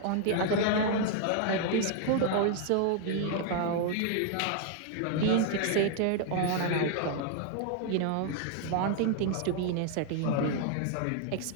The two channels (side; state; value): both; different; correlation 0.00